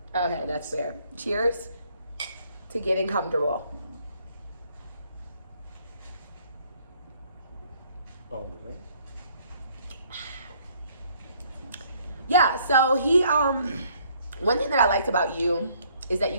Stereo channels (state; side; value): inverted; both; correlation -0.63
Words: Okay, that's fair. Cheers to getting comfortable. All the way. Yeah, so he one thing that I liked about you is that you